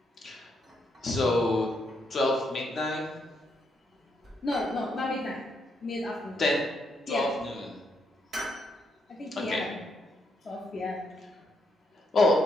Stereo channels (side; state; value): both; normal; correlation 0.77